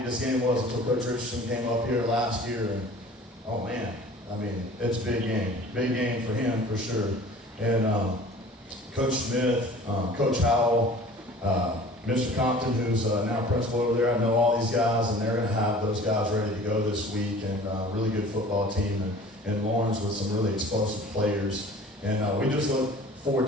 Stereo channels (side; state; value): both; normal; correlation 0.45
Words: this game was until Coach Richardson came up here last year, and oh man, I mean it's a big game for him for sure. And Coach Smith, Coach Howell. Mr. Compton, who's now principal over there, I know all these guys, and they're going to have those guys ready to go this week, and really good football team, and Lawrence with some really explosive players. And we just look forward